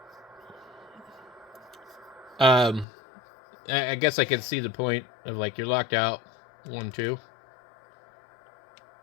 I guess I can see the point of, like, you're locked out. 1, 2.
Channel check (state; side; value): drops out; right; at 2.9 s